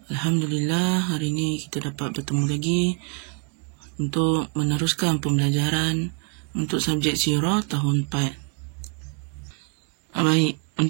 Alhamdulillah, hari ini kita dapat bertemu lagi untuk meneruskan pembelajaran untuk subjek sirah tahun 4. Baik,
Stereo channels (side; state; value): left; quieter; 35.8 dB